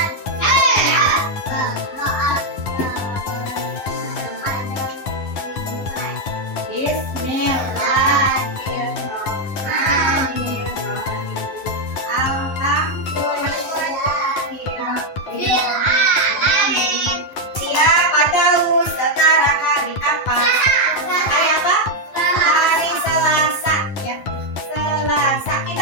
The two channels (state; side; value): late; right; 10 ms